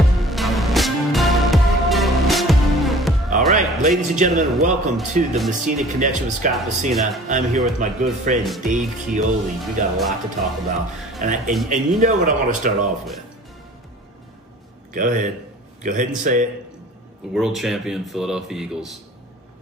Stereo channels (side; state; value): both; normal; correlation 0.46